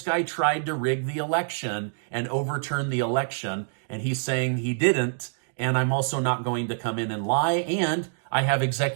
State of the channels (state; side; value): silent; left; digital silence